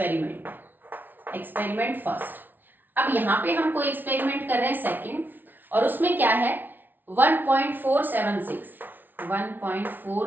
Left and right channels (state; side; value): late; left; 0.089 ms